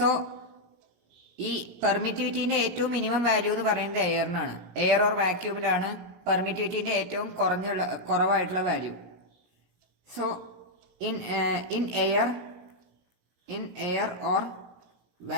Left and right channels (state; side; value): late; left; 17 ms